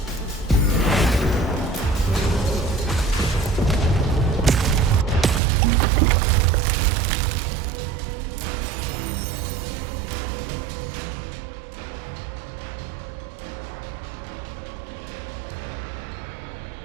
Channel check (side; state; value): left; drops out; at 5.4 s